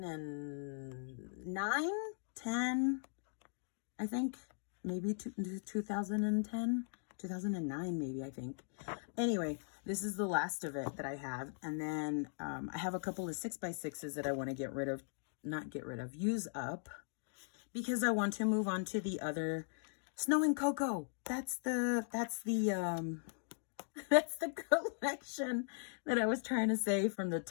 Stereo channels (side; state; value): right; silent; digital silence